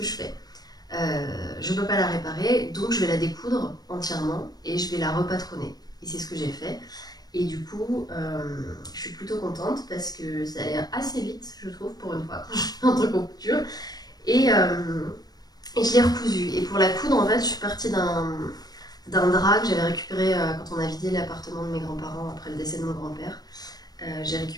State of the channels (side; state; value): right; late; 0.19 ms